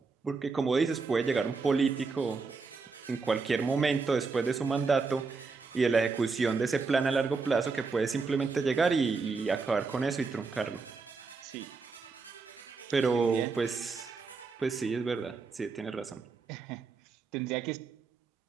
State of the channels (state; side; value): quieter; left; 4.5 dB